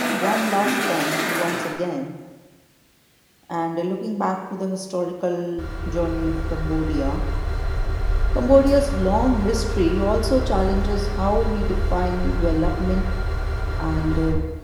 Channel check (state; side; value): identical; both; correlation 1.00